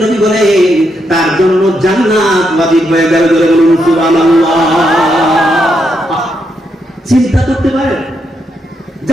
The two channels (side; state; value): both; normal; correlation 0.80